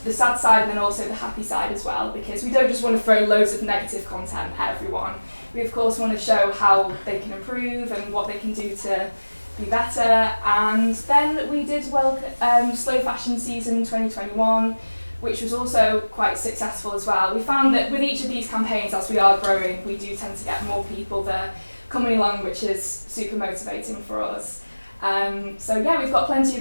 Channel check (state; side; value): inverted; both; correlation -1.00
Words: side and then also the happy side as well, because we don't just want to throw loads of negative content at everyone. We of course want to show how they can improve and what they can do to be better. And then we did Slow Fashion Season 2021, which was also quite successful as well. We found that with each of these campaigns, as we are growing, we do tend to get more people that are coming along, which is super motivating for us. So yeah, we've got plenty